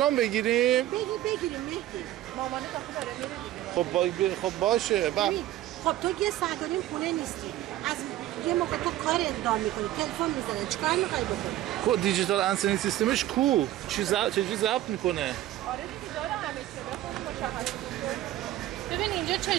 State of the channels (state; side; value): quieter; left; 14.0 dB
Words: بگیریم؟ بگیریم مهدی. مامانت آخه داره میره دیگه. خب باشه. خب تو یه ساعت و نیم خونه نیستی. از یه موقع تو کار اقدام میکنی، تلفن میزنه، چیکار میخوای بکنی؟ کو دیجیتال انسنی سیستمش کو؟ چجوری ضبط میکنه؟ آره دیگه داره همه چی. ببین اینجا